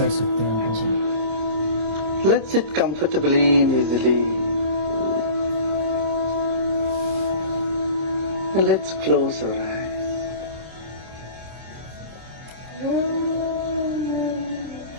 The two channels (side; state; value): left; late; 26 ms